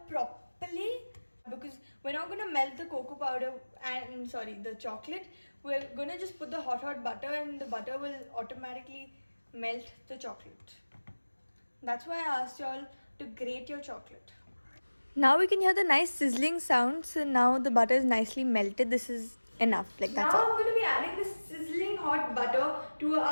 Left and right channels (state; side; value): inverted; both; correlation -1.00